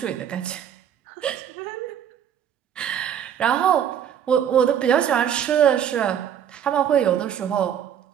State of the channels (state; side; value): quieter; left; 9.2 dB